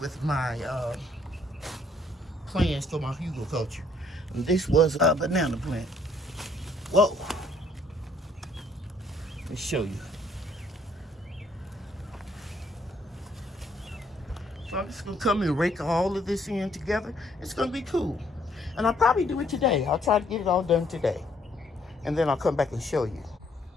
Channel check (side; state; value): both; normal; correlation 0.66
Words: with my plans for my hugelkultur. And this was a banana plant. Whoa. Let's show you. So I'm just going to come and rake all of this in together. It's going to be cool. And I'll probably do it today. I'll try to get it all done today. And then I'll come back and show you.